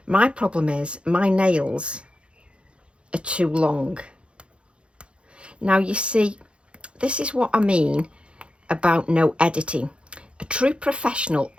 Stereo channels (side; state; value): left; late; 0.058 ms